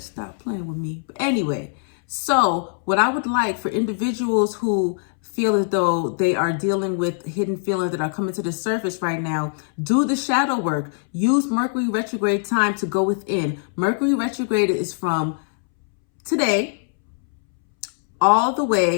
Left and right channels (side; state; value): right; silent; 64 dB below the other